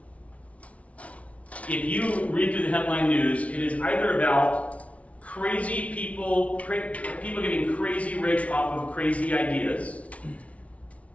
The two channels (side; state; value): right; late; 0.065 ms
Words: If you read through the headline news, it is either about crazy people getting crazy rich off of crazy ideas,